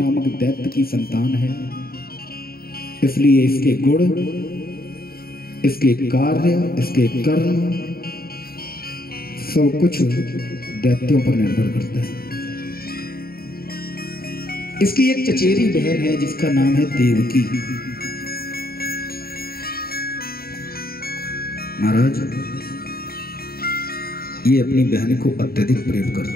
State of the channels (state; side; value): late; right; 0.44 ms